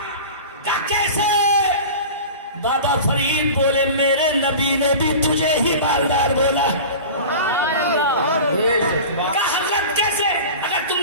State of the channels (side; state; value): both; inverted; correlation -0.35